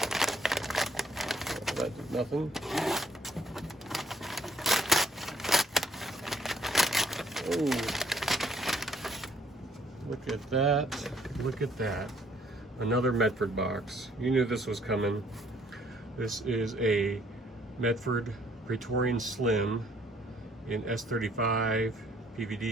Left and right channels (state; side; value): normal; both; correlation 0.64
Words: That did nothing. Oh, look at that. Look at that. Another Medford box. You knew this was coming. This is a Medford Praetorian Slim in S35